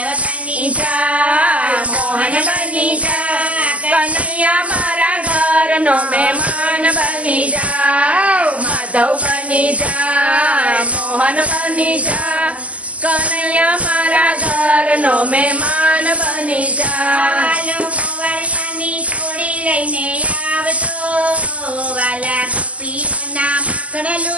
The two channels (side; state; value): left; late; 0.065 ms